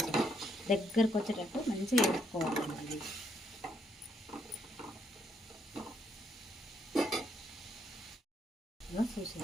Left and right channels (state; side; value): normal; both; correlation 0.73